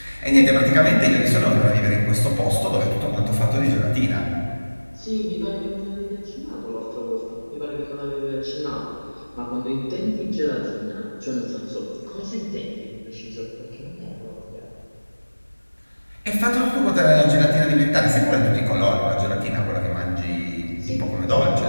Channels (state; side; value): inverted; both; correlation -1.00